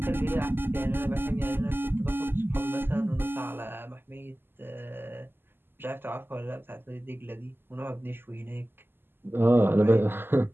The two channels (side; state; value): left; late; 0.10 ms